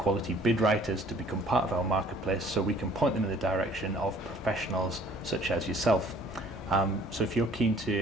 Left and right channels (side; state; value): both; normal; correlation 0.56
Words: bid writers to become part of our marketplace so we can point them in the direction of professionals such as yourself. So if you're keen